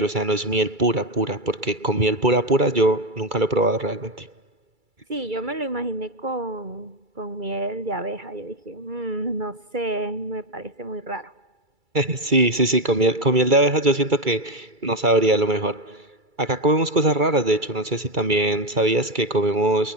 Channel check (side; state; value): left; late; 2.3 ms